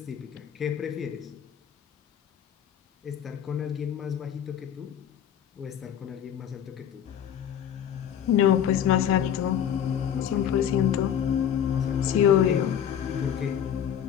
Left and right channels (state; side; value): quieter; right; 9.3 dB